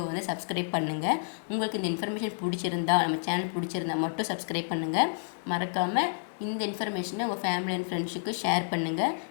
வந்து சப்ஸ்கிரைப் பண்ணுங்கள். உங்களுக்கு இந்த இன்ஃபர்மேஷன் பிடிச்சிருந்தா, நம்ம சேனல் பிடிச்சிருந்தா மட்டும் சப்ஸ்கிரைப் பண்ணுங்கள். மறக்காமல் இந்த இன்ஃபர்மேஷனை உங்கள் ஃபேமிலி அண்ட் ஃப்ரெண்ட்ஸுக்கு ஷேர் பண்ணுங்கள்.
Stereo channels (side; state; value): right; silent; 58 dB below the other